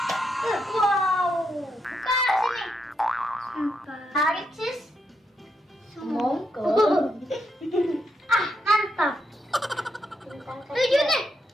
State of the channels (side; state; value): both; normal; correlation 0.81